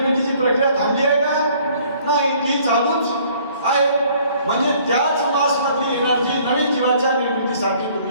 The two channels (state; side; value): inverted; both; correlation -0.58